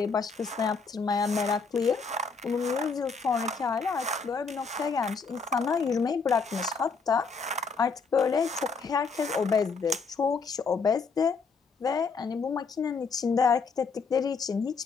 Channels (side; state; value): right; quieter; 4.9 dB